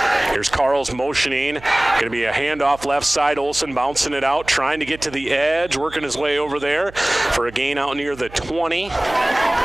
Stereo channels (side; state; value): right; noise; hum, 20 dB below the sound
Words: Here's Carl's motioning. Going to be a handoff left side. Olsen bouncing it out, trying to get to the edge, working his way over there for a gain out near the 20.